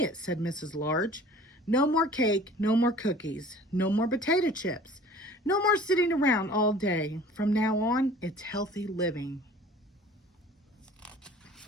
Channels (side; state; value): both; normal; correlation 0.46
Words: said Mrs. Large. No more cake, no more cookies, no more potato chips, no more sitting around all day. From now on, it's healthy living.